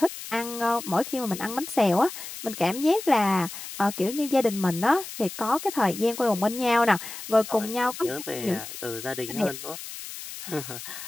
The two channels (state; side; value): noise; left; hiss, 11 dB below the sound